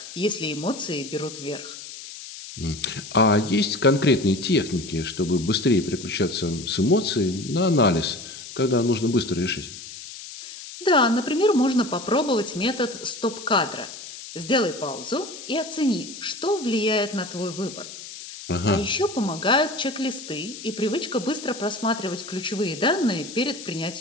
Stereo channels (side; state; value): left; noise; hiss, 13 dB below the sound